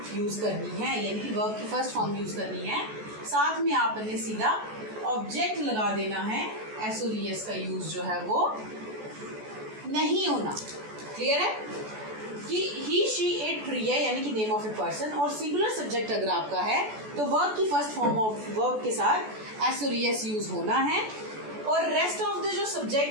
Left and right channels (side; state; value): left; late; 14 ms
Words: use करनी है, यानी कि वर्ब की फर्स्ट फॉर्म यूज करनी है, साथ में आपने सीधा ऑब्जेक्ट लगा देना है, एस और एस का यूज जो है वो नहीं होना। क्लियर है कि ही शी इट रिया यानी कि नेम ऑफ ए पर्सन, और सिंगुलर सब्जेक्ट अगर आपका है तो वर्ब की फर्स्ट फॉर्म ऑफ वर्ब के साथ एस और एस यूज होना है। और रेस्ट ऑफ द जो